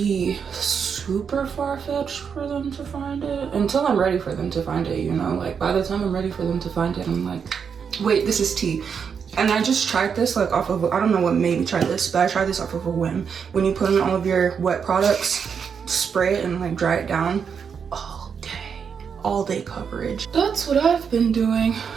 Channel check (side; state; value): left; quieter; 6.7 dB